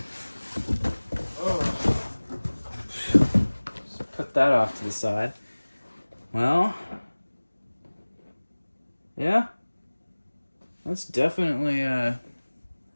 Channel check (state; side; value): inverted; both; correlation -1.00